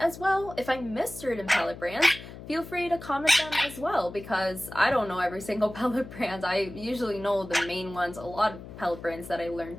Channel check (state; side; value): noise; left; hum, 14 dB below the sound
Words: well, if I missed certain pellet brands, feel free to comment them as well, because I don't know every single pellet brand. I usually know the main ones, a lot of pellet brands that I